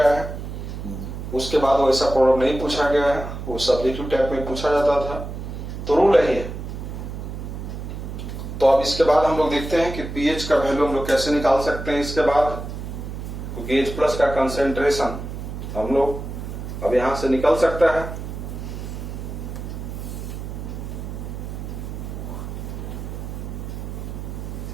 है, उसके बाद वैसा प्रॉब्लम नहीं पूछा गया है, वो सब्जेक्टिव टाइप में पूछा जाता था। तो रूल है। तो अब इसके बाद हम लोग देखते हैं कि पीएच का वैल्यू हम लोग कैसे निकाल सकते हैं। इसके बाद क्योंकि एच प्लस का कंसेंट्रेशन हम लोग अब यहां से निकल सकता है।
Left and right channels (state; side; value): noise; right; hum, 7 dB below the sound